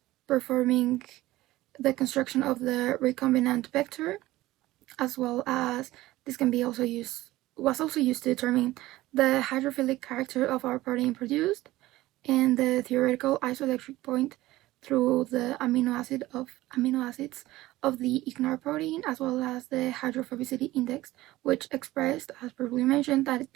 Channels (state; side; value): quieter; left; 17.1 dB